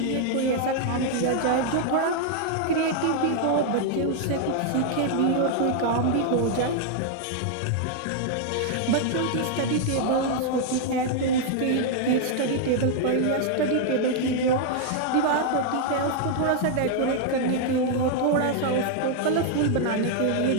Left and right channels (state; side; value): different; both; correlation 0.00